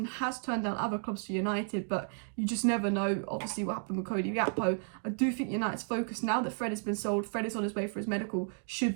has turned down other clubs for United, but you just never know, obviously, what happened with Cody Gakpo. I do think United's focus, now that Fred has been sold, Fred is on his way for his medical, should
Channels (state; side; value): silent; left; 56 dB below the other